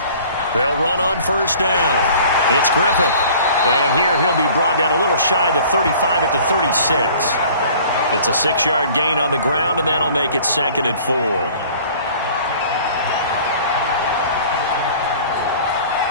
They'll run on 1st down. It's Griffith. And here he'll be brought down a little shy of the 35 at the 36. It's a 6-yard gain on the ground, and that'll make it 2nd and 4.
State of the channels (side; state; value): both; inverted; correlation -0.49